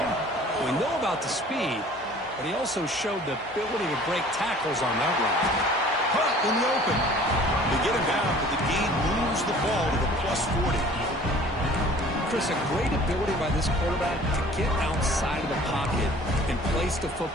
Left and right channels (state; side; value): normal; both; correlation 0.49